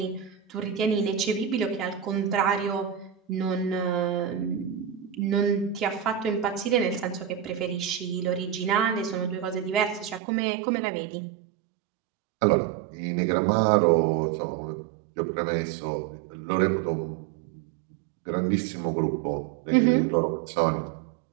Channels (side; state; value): left; drops out; at 10.2 s